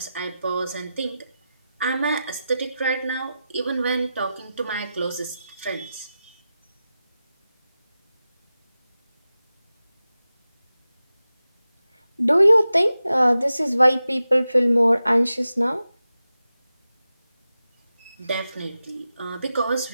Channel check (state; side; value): inverted; both; correlation -0.93